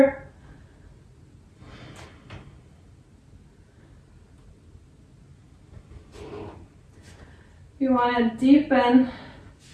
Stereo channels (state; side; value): identical; both; correlation 1.00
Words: If you want to deepen,